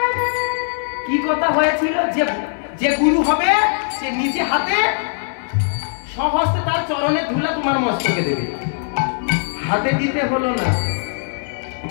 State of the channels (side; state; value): right; silent; 60 dB below the other